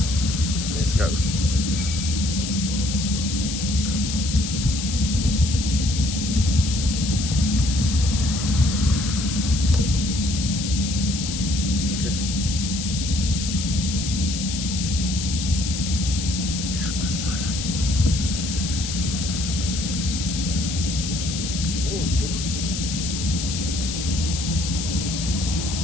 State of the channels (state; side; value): noise; left; hiss, 5 dB below the sound